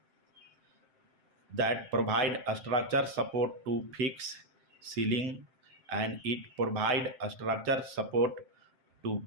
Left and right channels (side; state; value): left; late; 7.6 ms